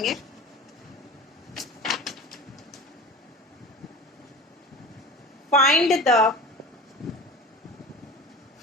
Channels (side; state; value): both; normal; correlation 0.35